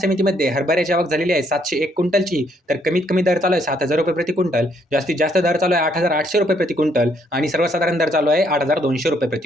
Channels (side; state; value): both; normal; correlation 0.70